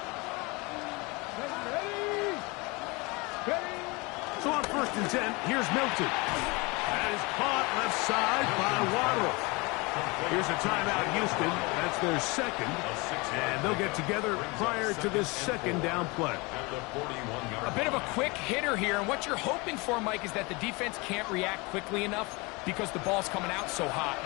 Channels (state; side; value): quieter; right; 26.3 dB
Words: Ready. Ready. So on 1st and 10, here's Milton. That is caught left side by Waddle. Here's a timeout, Houston. That's their 2nd. And they'll get together prior to this 2nd down play. At the 41-yard A bit of a quick hitter here, and what you're hoping for, Mike, is that the defense can't react quickly enough because the ball's coming out so hot.